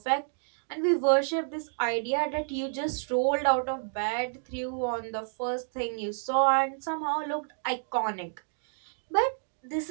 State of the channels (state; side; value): silent; left; digital silence